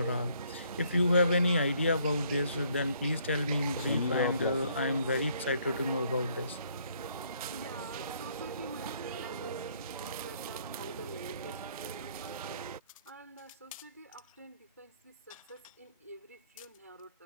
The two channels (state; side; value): inverted; both; correlation -0.66